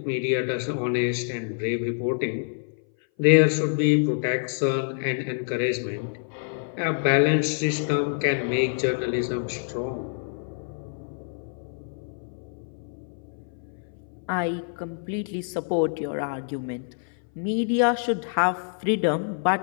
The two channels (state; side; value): silent; right; 58 dB below the other